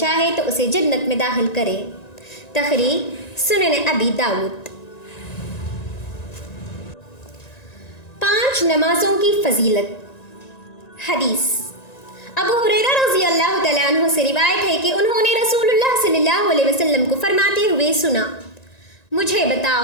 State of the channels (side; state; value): right; late; 1.9 ms